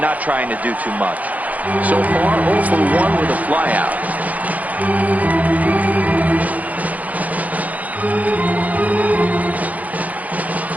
trying to do too much. So far, 0 for 1 with a flyout.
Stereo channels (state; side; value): late; left; 0.076 ms